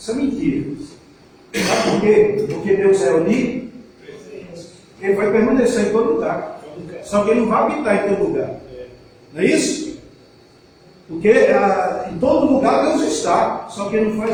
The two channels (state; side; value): identical; both; correlation 1.00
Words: é mentira. Sabe por quê? Porque Deus é unido, Ele vai permanecer em todo lugar. Só que Ele não vai habitar em todo lugar. Não é isso? Porque em todo lugar Deus está, só que Ele não